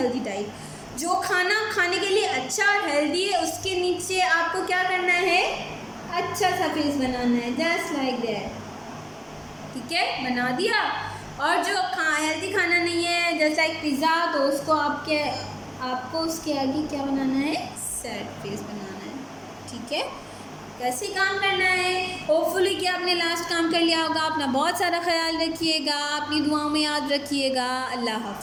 diet. जो खाना खाने के लिए अच्छा और healthy है उसके नीचे आपको क्या करना है, अच्छा सा फेस बनाना है, जस्ट लाइक दैट, ठीक है, बना दिया। और जो हेल्दी खाना नहीं है जैसे लाइक पिज़्ज़ा, तो उसको आपको उसके आगे क्या बनाना है, सैड फेस बनाना है, ठीक है। कैसे काम करना है, होपफुली कि आपने लास्ट काम कर लिया होगा। अपना बहुत सारा ख्याल रखिएगा, अपनी दुआओं में याद रखिएगा। अल्लाह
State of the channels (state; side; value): identical; both; correlation 1.00